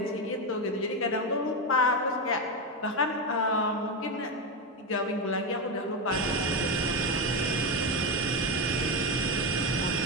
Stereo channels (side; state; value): both; normal; correlation 0.10